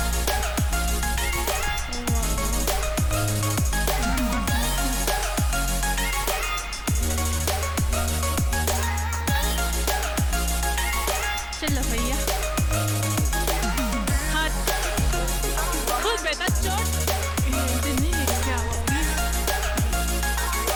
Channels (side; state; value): both; identical; correlation 1.00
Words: चलो भैया हाँ खुद बेटा चोट नहीं है क्या